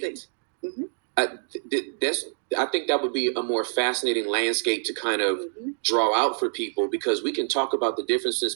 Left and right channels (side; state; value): left; silent; 61 dB below the other